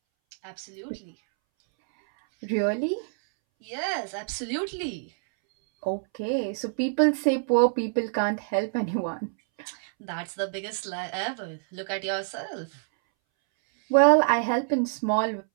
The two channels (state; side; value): silent; left; 60 dB below the other